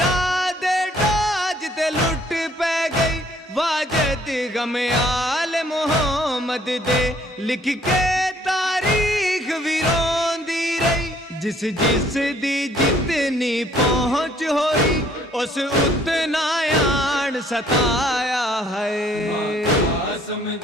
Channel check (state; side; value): normal; both; correlation 0.62